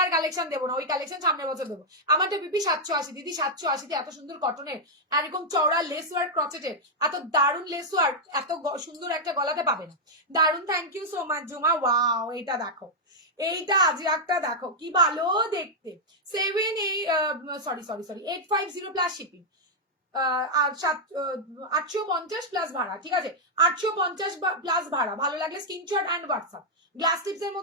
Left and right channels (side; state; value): both; normal; correlation -0.03